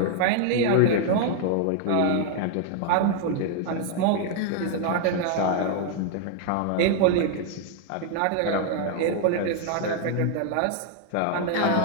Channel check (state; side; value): different; both; correlation 0.00